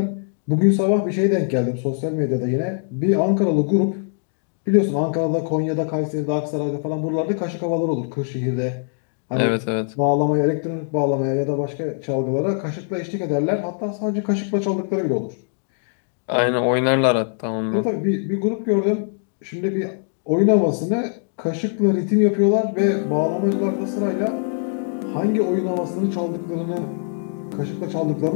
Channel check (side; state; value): right; silent; digital silence